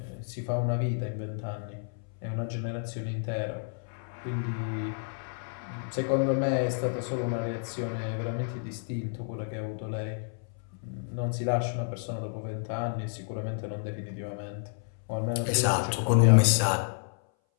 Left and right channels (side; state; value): right; silent; 58 dB below the other